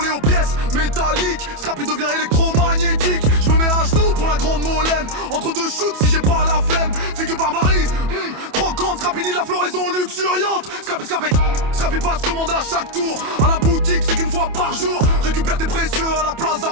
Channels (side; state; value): left; late; 27 ms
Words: aux pièces métalliques. Scrappy devient électromagnétique. Je me mets à genoux pour la grande molène. Entre deux shoots si j'ai pas la flemme. Figue barbarie, croquante. Scrappy ni la floraison luxuriante. Scrappy passe commande à chaque tour. À la boutique c'est qu'une fois par jour. Récupère tes précieux à la Plaza